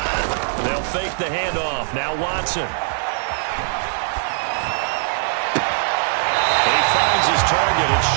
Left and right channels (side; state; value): left; silent; 63 dB below the other